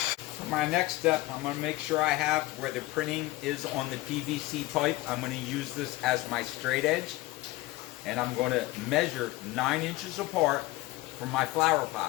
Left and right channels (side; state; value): right; quieter; 19.1 dB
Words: My next step, I'm going to make sure I have where the printing is on the PVC pipe. I'm going to use this as my straight edge, and I'm going to measure 9 inches apart from my flower